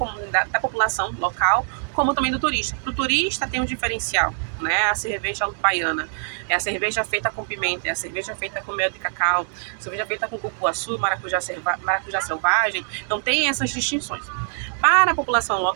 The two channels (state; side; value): silent; left; digital silence